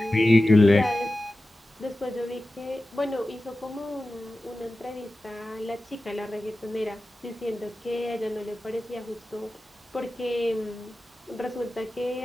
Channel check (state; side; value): normal; both; correlation 0.95